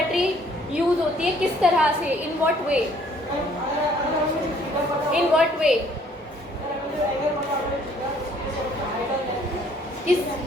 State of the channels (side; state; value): both; normal; correlation 0.61